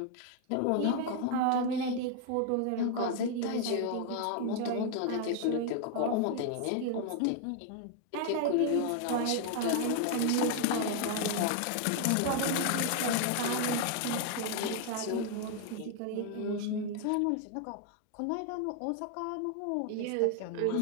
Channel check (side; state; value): both; different; correlation 0.00